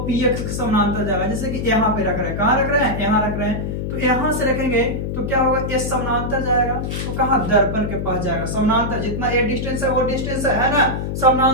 PX के समानांतर जाएगा। जैसे कि यहाँ पे रख रहे हैं, कहाँ रख रहे हैं? यहाँ रख रहे हैं। तो यहां से रखेंगे तो क्या होगा? ये समानांतर जाएगा तो कहां? दर्पण के पास जाएगा। समानांतर जितना ये डिस्टेंस है वो डिस्टेंस है ना।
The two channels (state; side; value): noise; left; hum, 3 dB below the sound